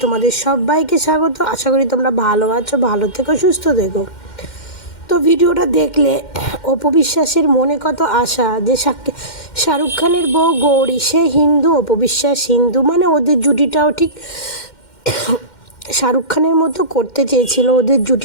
তোমাদের সবাইকে স্বাগত। আশা করি তোমরা ভালো আছো, ভালো থেকো, সুস্থ থেকো। তো ভিডিওটা দেখলে অপু বিশ্বাসের মনে কত আশা যে শাহরুখ খানের বউ গৌরী সে হিন্দু, অপু বিশ্বাস হিন্দু, মানে ওদের জুটিটাও ঠিক শাহরুখ খানের মতো করতে চেয়েছিল ওদের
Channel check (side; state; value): right; late; 2.1 ms